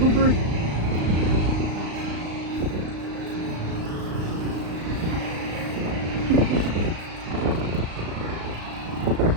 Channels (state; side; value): late; left; 35 ms